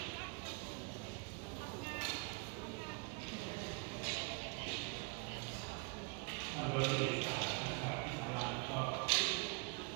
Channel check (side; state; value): left; quieter; 35.3 dB